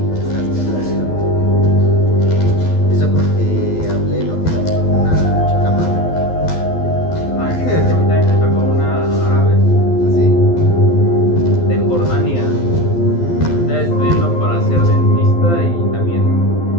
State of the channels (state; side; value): late; right; 12 ms